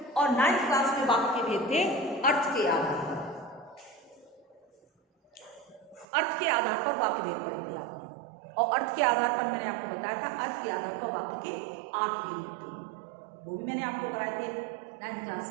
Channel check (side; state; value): left; drops out; at 6.1 s